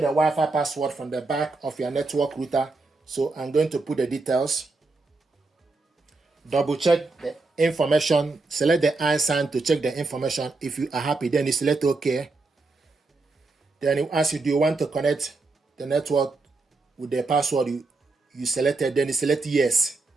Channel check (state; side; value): quieter; left; 3.6 dB